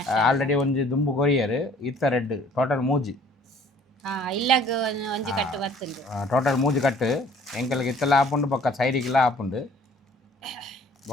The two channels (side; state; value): both; normal; correlation 0.54